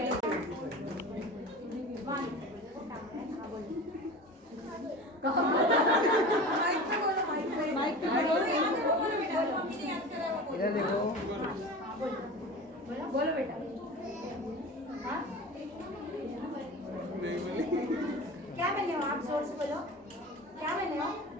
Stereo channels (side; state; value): both; normal; correlation 0.34